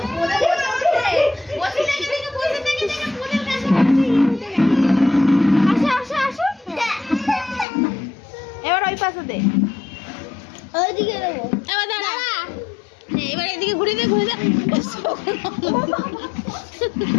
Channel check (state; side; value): drops out; right; at 7.7 s